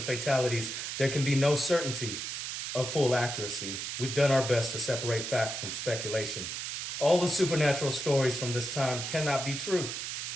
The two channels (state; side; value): noise; right; hiss, 5 dB below the sound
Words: fatalities, there can be no certainty of full accuracy. We've done our best to separate fact from speculation. All the supernatural stories from this time cannot be true.